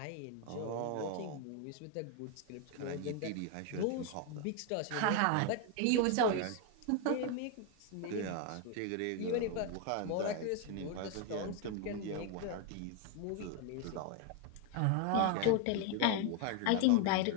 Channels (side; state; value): both; different; correlation 0.01